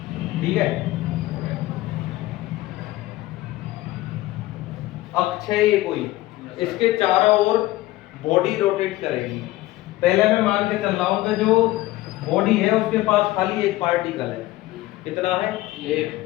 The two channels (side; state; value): right; quieter; 17.5 dB